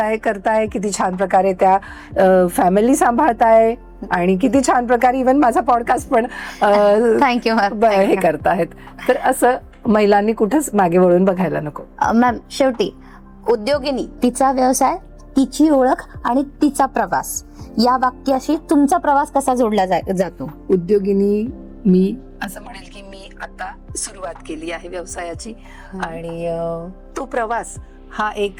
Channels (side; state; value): both; identical; correlation 1.00